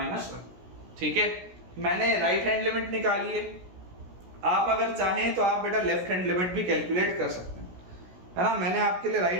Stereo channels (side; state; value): left; late; 16 ms